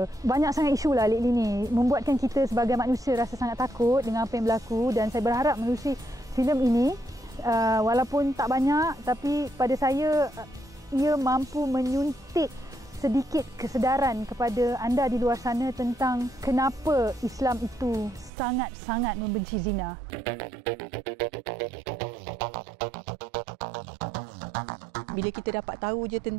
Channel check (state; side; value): drops out; left; at 18.3 s